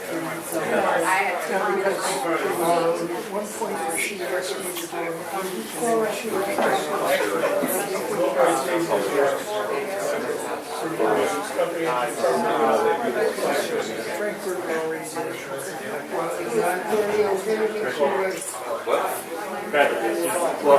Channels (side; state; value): both; identical; correlation 1.00